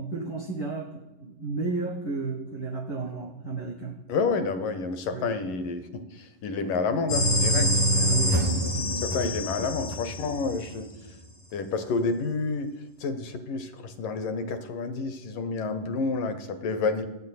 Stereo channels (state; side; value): late; right; 11 ms